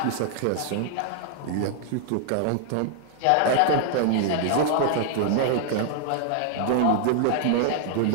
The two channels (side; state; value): both; different; correlation 0.00